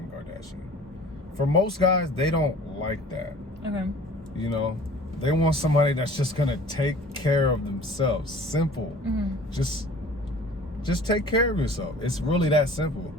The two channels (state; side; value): normal; both; correlation 0.46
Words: Kardashian. For most guys, they don't like that. Okay. They want somebody that's just gonna take care of themselves. Simple. Just take care of yourself. It's really that simple.